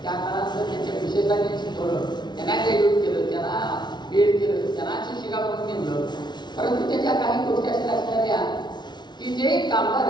त्या काळानंतर त्यांच्या विशेषांनी शिकवलं, त्यांना ग्रॅज्युएट केलं, त्यांना बीएड केलं, त्यांना शिक्षिका म्हणून नेमलं. परंतु त्याच्या काही गोष्टी अशा असणाऱ्या की जे कामगार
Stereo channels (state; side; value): late; right; 0.21 ms